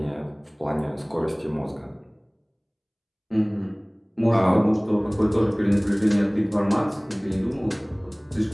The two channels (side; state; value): both; identical; correlation 1.00